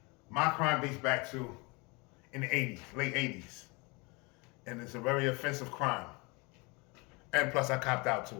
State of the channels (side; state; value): right; quieter; 28.1 dB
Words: my crime dates back to in the 80s, late 80s. And it's a very offensive crime. And plus I copped out